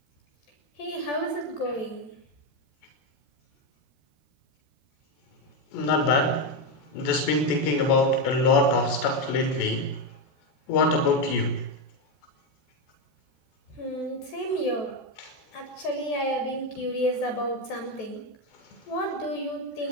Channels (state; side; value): late; right; 14 ms